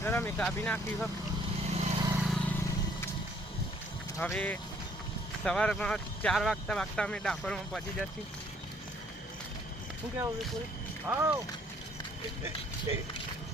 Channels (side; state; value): both; normal; correlation 0.62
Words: અમે કાપી નાખી છે. હવે સવારમાં 4 વાગતા અમે ડાકોરમાં પહોંચી જશું. શું કેવું વિપુલ?